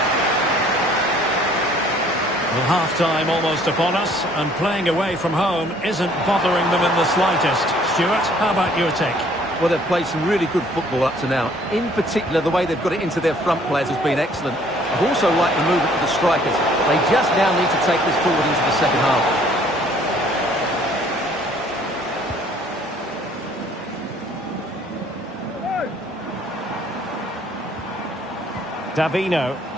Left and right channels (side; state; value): both; normal; correlation 0.58